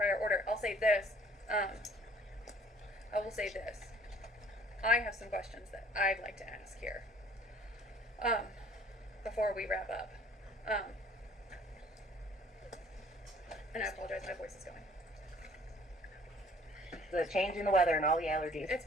order. I'll say this. I will say this. I have some questions that I'd like to ask here. Before we wrap up. And I apologize, my voice is going. The change in the weather and all the allergies. It's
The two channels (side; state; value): both; normal; correlation 0.55